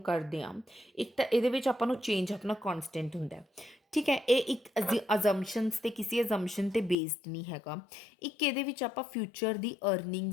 ਕਰਦੇ ਹਾਂ? ਇੱਕ ਤਾਂ ਇਹਦੇ ਵਿੱਚ ਆਪਾਂ ਨੂੰ ਚੇਂਜ ਆਪਣਾ ਕਨਸਟੈਂਟ ਹੁੰਦਾ, ਠੀਕ ਹੈ। ਇਹ ਇੱਕ ਅਜ਼ੰਪਸ਼ਨਸ ਤੇ ਕਿਸੇ ਅਜ਼ੰਪਸ਼ਨ ਤੇ ਬੇਸਡ ਨਹੀਂ ਹੈਗਾ। ਇੱਕ ਇਹਦੇ ਵਿੱਚ ਆਪਾਂ ਫਿਊਚਰ ਦੀ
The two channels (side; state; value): right; drops out; at 7.0 s